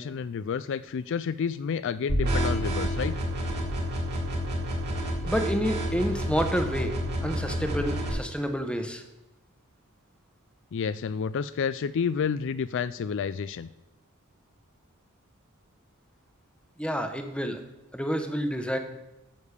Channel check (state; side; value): normal; both; correlation 0.60